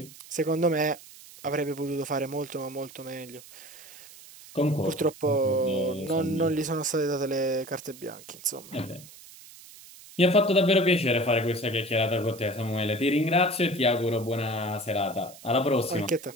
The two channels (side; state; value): right; noise; hiss, 19 dB below the sound